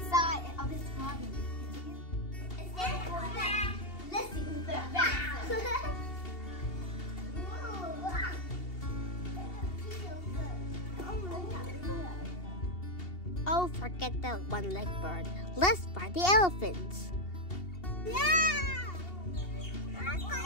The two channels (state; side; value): late; right; 2.7 ms